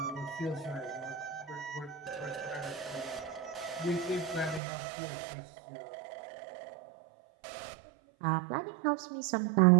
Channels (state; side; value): drops out; left; at 4.6 s